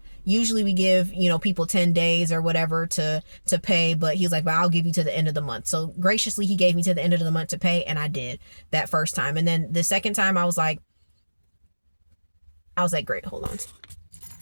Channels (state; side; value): inverted; both; correlation -1.00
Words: usually we give, people 10 days or whatever to pay, but he was like, but I'll give you to the end of the month. So graciously, he gave me to the end of the month to pay, and I did that first time. And then the second time I was like, great, hold on.